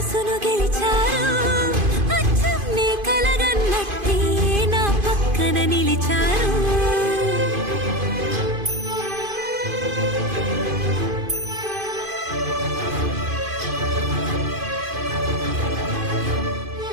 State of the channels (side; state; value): left; late; 2.5 ms